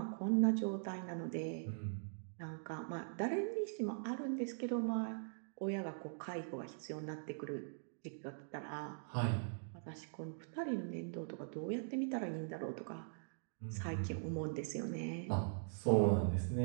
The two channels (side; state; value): left; silent; digital silence